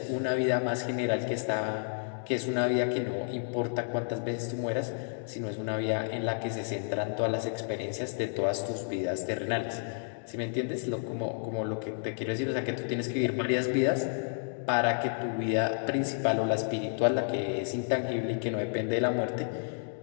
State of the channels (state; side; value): silent; right; digital silence